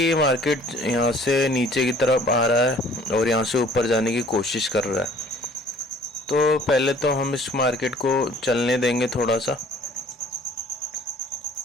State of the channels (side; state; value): both; normal; correlation 0.53